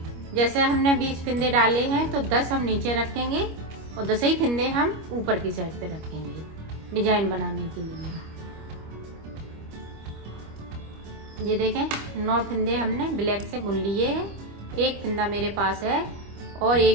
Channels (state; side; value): late; left; 25 ms